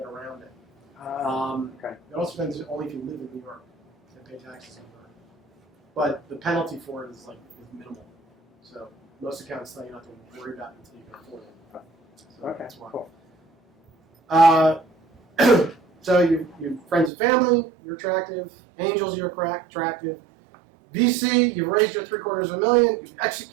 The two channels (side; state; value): left; drops out; at 17.1 s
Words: around it. okay. It also depends only if you live in New York and pay taxes in New York. But the penalty for it is minimal. So most accountants tell you not to worry about it until you can afford it. So Okay. that's why. Cool. So you friends and family, you're attractive. Angels, you're attractive. VC, you've raised your $750,000, you've